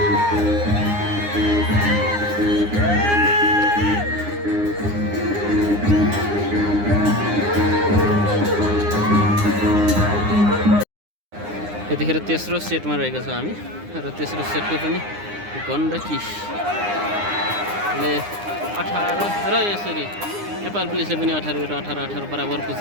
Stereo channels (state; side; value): late; left; 9.8 ms